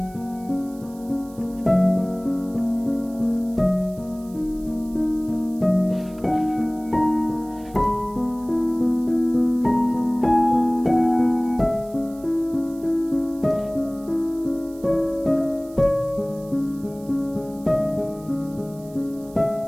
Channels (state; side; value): noise; right; hiss, 25 dB below the sound